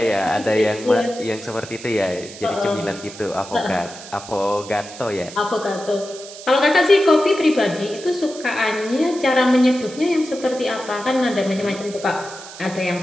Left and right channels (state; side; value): noise; right; hiss, 15 dB below the sound